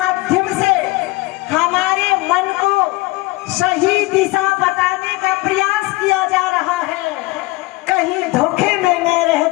से हमारे मन को सही दिशा बताने का प्रयास किया जा रहा है। कहीं धोखे में न रह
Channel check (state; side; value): quieter; right; 21.2 dB